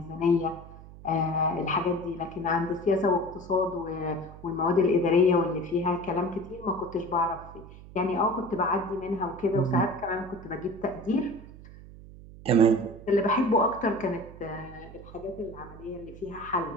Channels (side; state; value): right; noise; hum, 17 dB below the sound